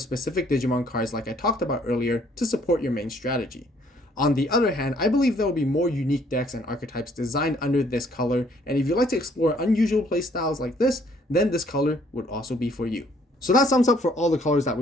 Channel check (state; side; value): normal; both; correlation 0.63